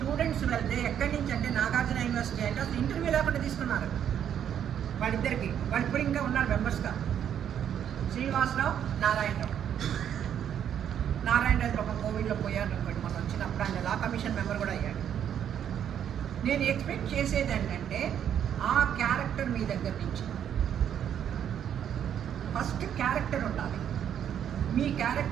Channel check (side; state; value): left; quieter; 9.3 dB